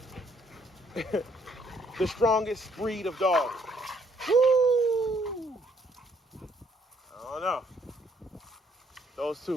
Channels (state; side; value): normal; both; correlation 0.67